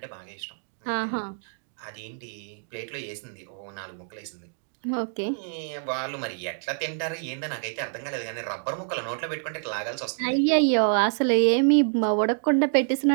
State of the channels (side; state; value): left; silent; digital silence